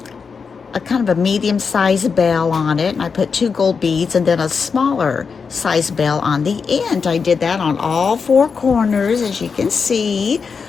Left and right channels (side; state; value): right; quieter; 5.5 dB